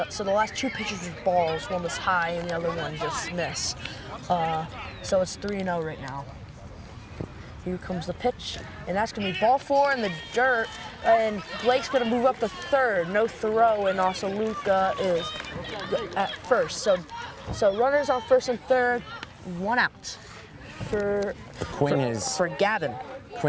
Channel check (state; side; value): identical; both; correlation 1.00